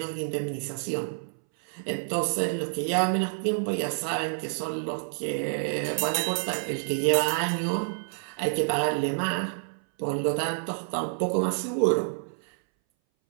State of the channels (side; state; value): left; silent; 59 dB below the other